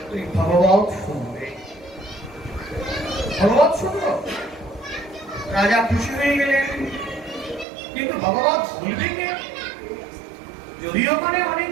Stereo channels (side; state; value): left; drops out; at 7.7 s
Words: তুই ভগবত শুনবে। ভগবত শুনলো, রাজা খুশি হয়ে গেলেন, কিন্তু ভগবত বলবে কে? যদিও ওখানে